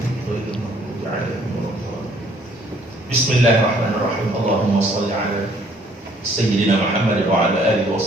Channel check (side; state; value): both; normal; correlation 0.62